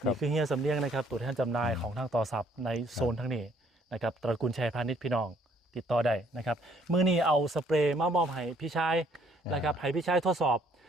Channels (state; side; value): normal; both; correlation 0.64